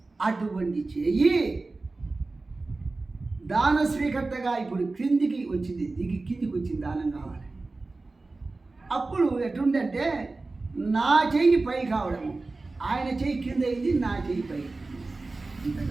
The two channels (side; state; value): left; quieter; 3.5 dB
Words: అటువంటి చెయ్యి దాన స్వీకర్తగా ఇప్పుడు క్రిందికి వచ్చింది, కిందికి వచ్చింది దానం కావాలి. అప్పుడు ఎట్లుందంటే నా చెయ్యి పై కావడము, ఆయన చెయ్యి కింద అయింది, నా చెయ్యి పై.